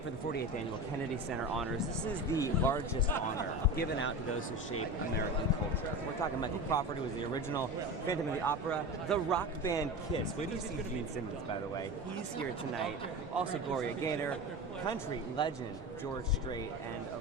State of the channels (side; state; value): both; normal; correlation 0.28